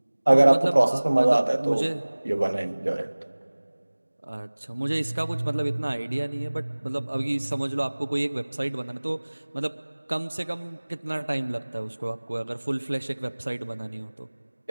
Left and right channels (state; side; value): inverted; both; correlation -1.00